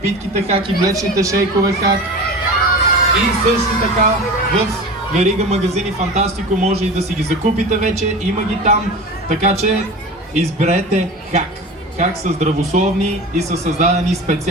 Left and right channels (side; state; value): both; normal; correlation 0.32